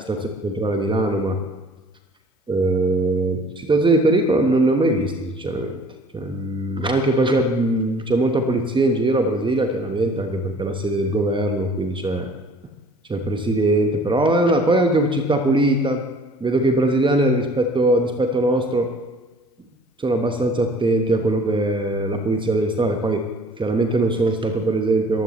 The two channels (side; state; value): both; normal; correlation 0.51